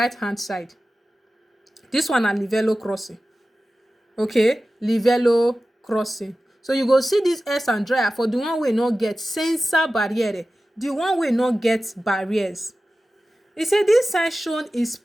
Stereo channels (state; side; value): normal; both; correlation 0.95